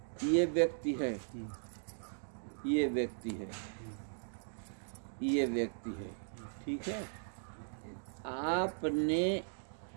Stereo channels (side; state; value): left; silent; digital silence